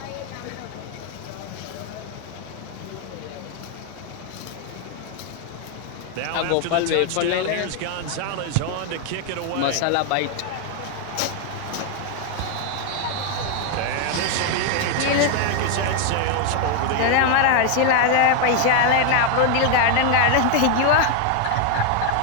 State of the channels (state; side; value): different; both; correlation 0.00